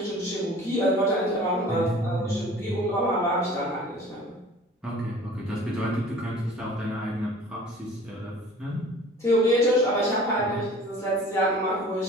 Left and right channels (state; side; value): normal; both; correlation 0.46